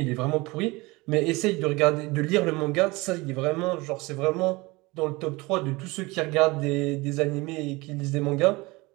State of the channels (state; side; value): quieter; left; 23.2 dB